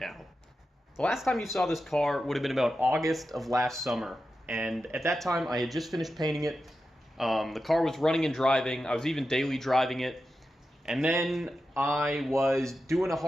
The last time you saw this car would have been about August of last summer, and at that time I had just finished painting it. The car was running and driving. I was even daily driving it, and then I was doing a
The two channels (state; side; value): normal; both; correlation 0.91